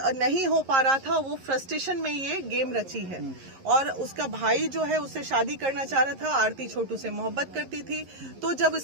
नहीं हो पा रहा था। वो फ्रस्ट्रेशन में ये गेम रची है, और उसका भाई जो है उससे शादी करना चाह रहा था। आरती छोटू से मोहब्बत करती थी, तो जब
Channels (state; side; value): late; left; 11 ms